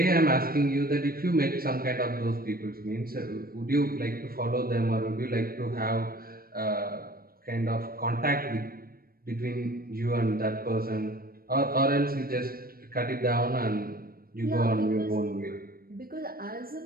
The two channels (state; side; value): late; left; 0.43 ms